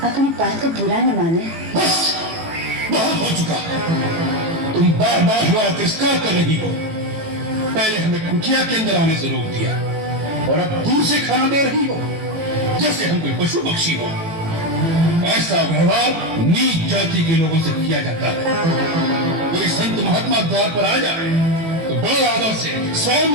अपनी बात को बुरा न माने। बस बहुत हो चुका। तुम बार बार हमारा तिरस्कार कर रही हो। पहले हमें कुटिया के अंदर आने से रोक दिया और अब दूर से खाना दे रही हो जैसे हम कोई पशु पक्षी हो। ऐसा व्यवहार नीच जाति के लोगों से किया जाता है। कोई संत महात्मा द्वार पर आ जाए तो बड़े आदर से स्वयं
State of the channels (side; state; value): left; late; 18 ms